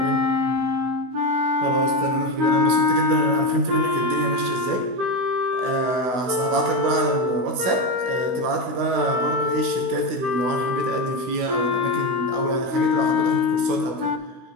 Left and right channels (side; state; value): left; late; 16 ms